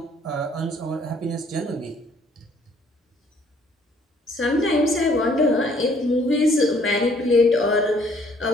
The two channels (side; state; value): both; normal; correlation 0.62